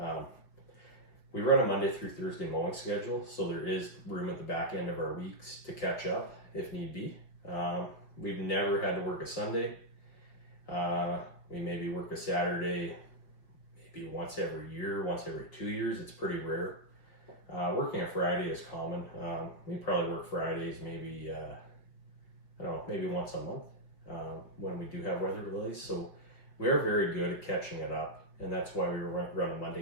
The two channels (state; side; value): late; right; 5.9 ms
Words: We run a Monday through Thursday mowing schedule, so there is room at the back end of our weeks to catch up if need be. We've never had to work a Sunday. We maybe work a Saturday, maybe once every year, once every 2 years. It's pretty rare. Working a Friday is common. We probably work Fridays maybe, maybe once a month when we do have weather delays. So we are very good at catching it up. And that's why we run a